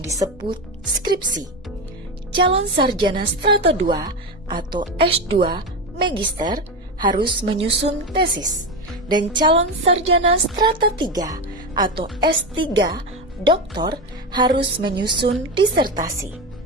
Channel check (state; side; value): normal; both; correlation 0.17